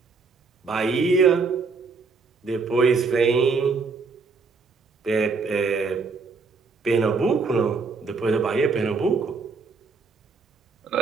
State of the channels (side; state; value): left; quieter; 4.5 dB